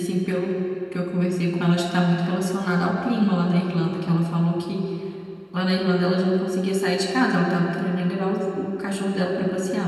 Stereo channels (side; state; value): both; identical; correlation 1.00